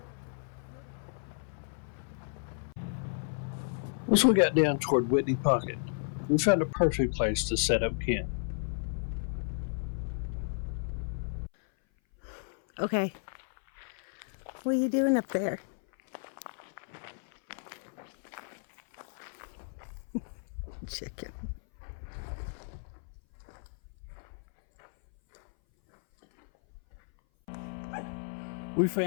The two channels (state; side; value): silent; right; 56 dB below the other